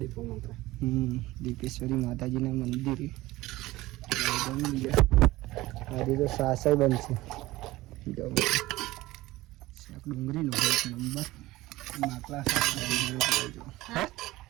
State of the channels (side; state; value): left; quieter; 18.3 dB